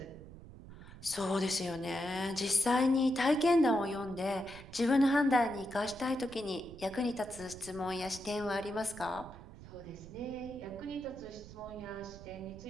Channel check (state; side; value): noise; right; rumble, 16 dB below the sound